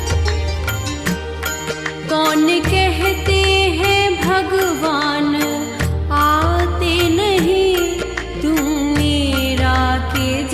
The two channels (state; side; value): identical; both; correlation 1.00